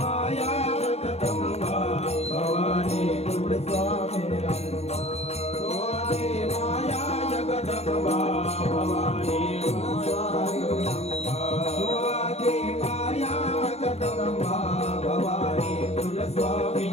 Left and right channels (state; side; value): late; right; 0.31 ms